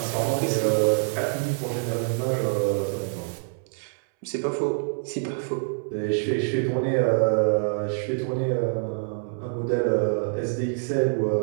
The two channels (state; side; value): silent; left; 61 dB below the other